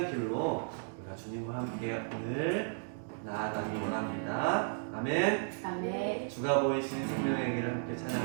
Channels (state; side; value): silent; left; digital silence